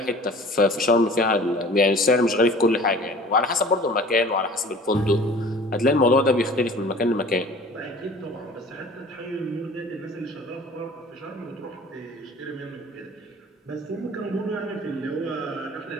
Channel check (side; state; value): both; normal; correlation 0.45